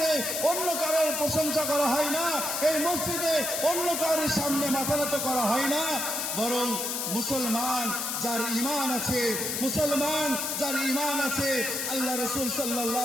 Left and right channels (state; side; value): noise; left; hiss, 1 dB below the sound